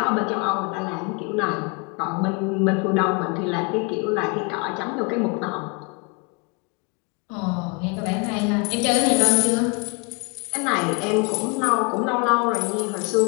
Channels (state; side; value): quieter; right; 31.4 dB